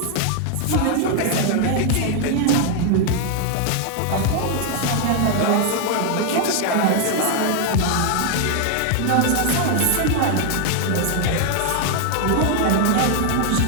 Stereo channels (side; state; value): both; different; correlation 0.00